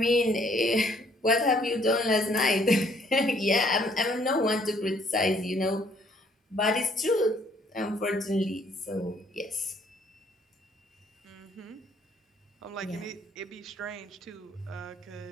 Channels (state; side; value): normal; both; correlation 0.64